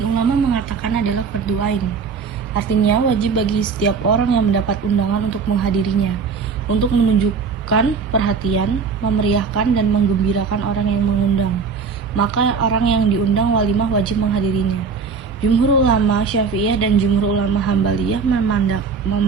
ulama mengatakan adalah fardu ain. Artinya wajib bagi setiap orang yang mendapat undangan untuk menghadirinya, untuk menunjukkan perhatian, memeriahkan dan menggembirakan orang yang mengundang. Maka orang yang diundang walimah wajib menghadirinya. Jumhur ulama Syafi'iyah dan jumhur ulama Hambaliyah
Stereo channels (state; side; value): quieter; left; 5.5 dB